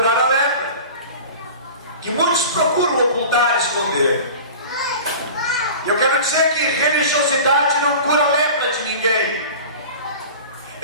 a lepra, que muitos procuram ocultar, esconder. Eu quero dizer que religiosidade não cura a lepra de ninguém.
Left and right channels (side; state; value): both; inverted; correlation -0.37